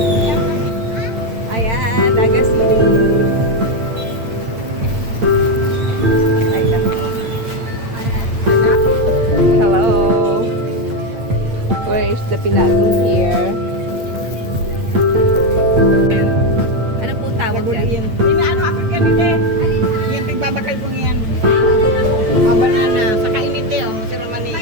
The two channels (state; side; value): late; left; 8.9 ms